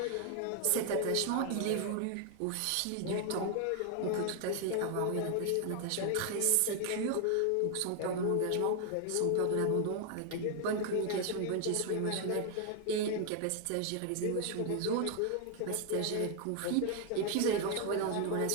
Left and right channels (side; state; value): both; different; correlation 0.00